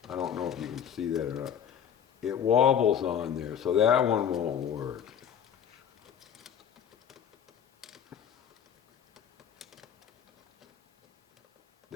I don't know if you can see that or not. It wobbles on there, so that one won't work.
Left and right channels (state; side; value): quieter; right; 8.7 dB